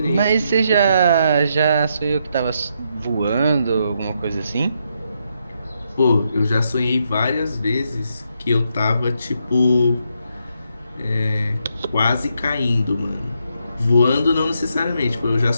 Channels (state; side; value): inverted; both; correlation -0.79